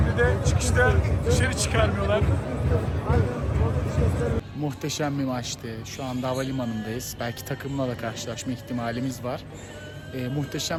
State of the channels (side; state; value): both; identical; correlation 1.00